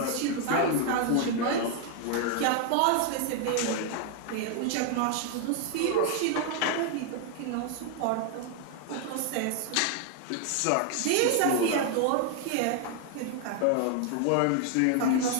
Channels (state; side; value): different; both; correlation 0.00